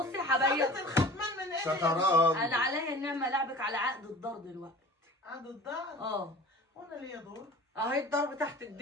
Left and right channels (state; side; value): normal; both; correlation 0.42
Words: يا حبايبي خدت الختمان من ايه؟ شطران. انا عليا النعمه لعبك على عقد الدار دلوقتي. عاد الدار. وانا ليا دور. اهي الضرب تحت